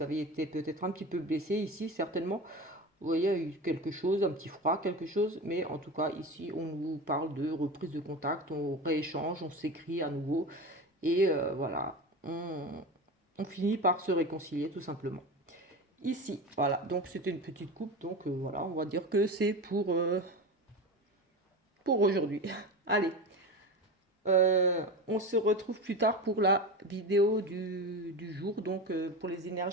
avez été peut-être un petit peu blessé ici, certainement, vous voyez, il y a eu quelque chose, un petit froid, quelque chose, mais en tout cas, ici, on vous parle de reprise de contact, on rééchange, on s'écrit à nouveau, et voilà, on finit par se réconcilier tout simplement. Ici, voilà, donc c'était une petite coupe, donc voilà, on va dire que c'est pour aujourd'hui. Allez, on se retrouve plus tard pour la vidéo du jour, donc pour les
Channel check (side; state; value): both; normal; correlation 0.26